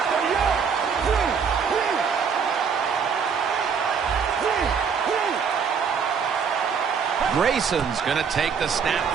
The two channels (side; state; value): left; quieter; 6.4 dB